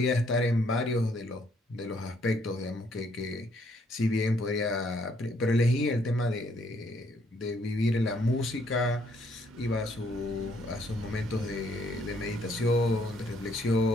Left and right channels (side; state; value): both; normal; correlation 0.68